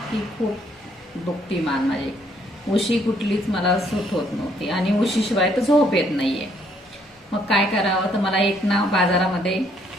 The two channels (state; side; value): normal; both; correlation 0.68